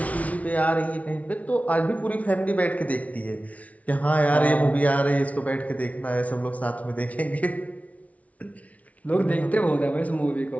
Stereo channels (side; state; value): right; late; 0.068 ms